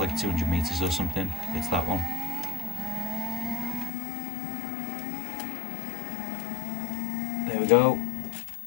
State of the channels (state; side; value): drops out; right; at 3.9 s